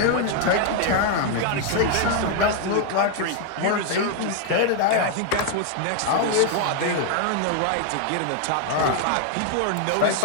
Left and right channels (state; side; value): different; both; correlation 0.00